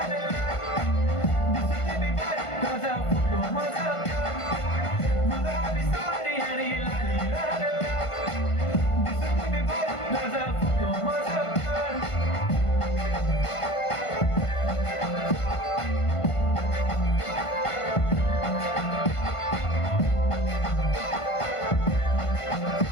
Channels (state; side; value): late; right; 1.5 ms